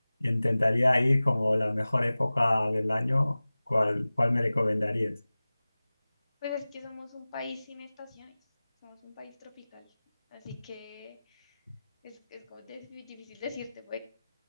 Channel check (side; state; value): both; inverted; correlation -0.98